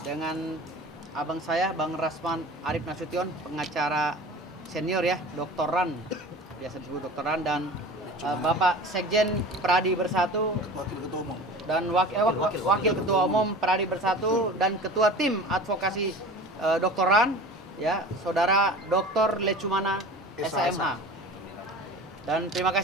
dengan abang saya Bang Rasman Arif Nasution, pengacara senior ya, doktoran, biasa disebut doktoran, dan Bapak Sekjen Pradi Bersatu, Wakil Ketua Umum. dan Wakil Ketua Umum Pradi Bersatu, dan Ketua Tim Advokasi Doktoran ya, Saudara Dr. Lecumana SMH. Dan terima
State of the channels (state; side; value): normal; both; correlation 0.38